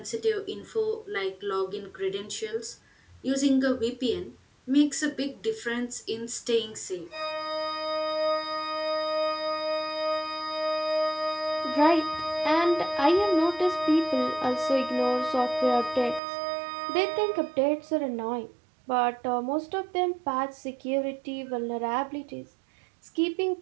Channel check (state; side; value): drops out; left; at 16.2 s